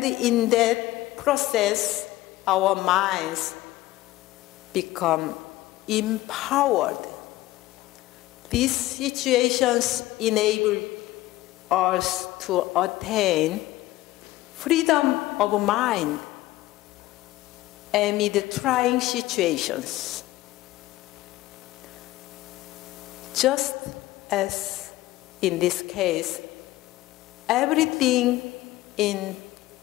in that process, our minds become empowered. These situations enable us to attain freedom of mind amid trying situations. Just as in this case, everything in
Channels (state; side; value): quieter; right; 17.0 dB